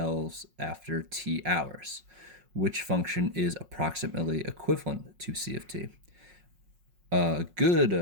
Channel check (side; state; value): left; late; 5.5 ms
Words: after t hours, which function is approximately equivalent to C of t. A good